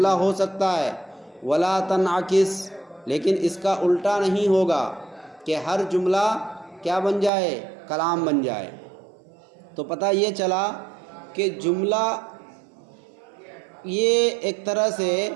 ہو سکتا ہے، وَلَا تَنْعَكِسْ، لیکن اس کا الٹا نہیں ہوگا کہ ہر جملہ کیا بن جائے؟ کلام بن جائے۔ تو پتہ یہ چلا کہ جملہ یہ ایک طرح سے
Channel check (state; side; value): drops out; left; at 7.3 s